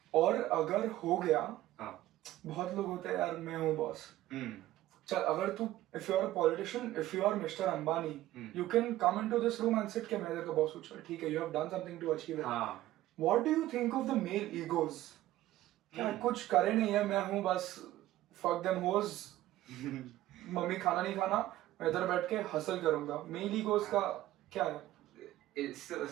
और अगर हो गया, बहुत लोग होते हैं यार मैं हूँ boss. चल अगर तू if you are a politician, if you are Mr. Ambani, you can come into this room and sit के मैं इधर का boss हूँ. चल ठीक है, you have done something to achieve it. What do you think of the male egos? क्या कुछ करे नहीं है, मैं हूँ बस fuck them hoes. मम्मी खाना नहीं खाना, मैं इधर बैठ के हसल करूँगा. Male egos का क्या है?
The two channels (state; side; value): quieter; left; 15.1 dB